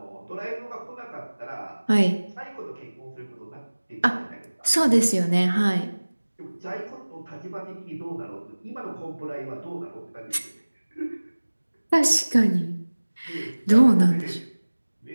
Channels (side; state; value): both; inverted; correlation -1.00